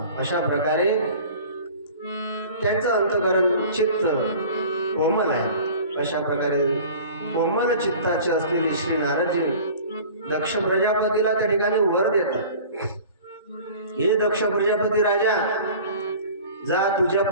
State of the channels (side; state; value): both; inverted; correlation -0.43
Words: अशा प्रकारे त्यांचं अंतकरण चित्त कोमल आहे. अशा प्रकारे कोमल चित्ताचे असलेले श्री नारदजी दक्ष प्रजापतीला त्या ठिकाणी वर देतात. हे दक्ष प्रजापती राजा, जा तुझ्या